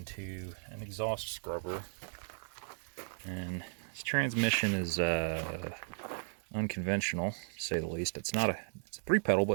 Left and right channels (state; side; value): silent; left; digital silence